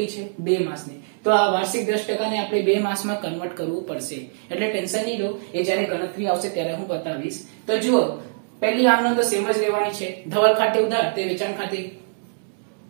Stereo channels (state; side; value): silent; left; 63 dB below the other